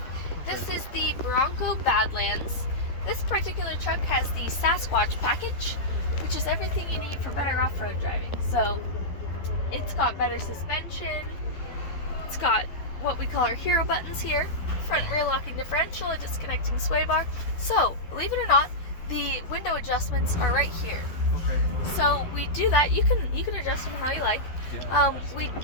Okay. This is the Bronco Badlands. This particular truck has the Sasquatch package, which is everything you need for better off-road driving. So it's got better suspension, it's got what we call our hero buttons here, front rear locking differential, a disconnecting sway bar. So, believe it or not, the window adjustments are right here. Okay. So we do that, you can adjust them how you like. Yeah, We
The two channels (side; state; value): right; late; 12 ms